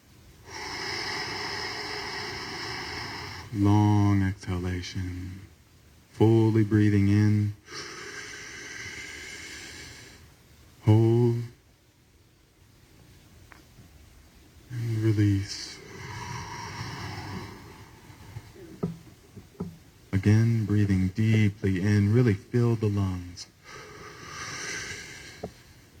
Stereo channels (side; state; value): both; identical; correlation 1.00